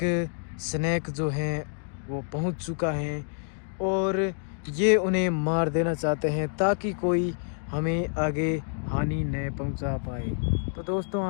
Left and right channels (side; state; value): right; silent; 60 dB below the other